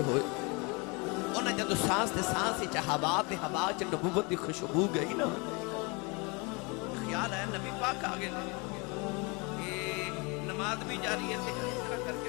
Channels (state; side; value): quieter; right; 29.4 dB